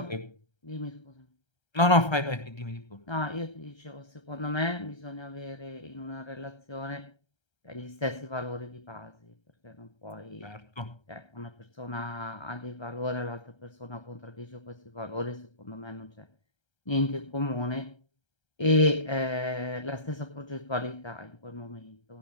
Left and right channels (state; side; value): late; right; 1.3 ms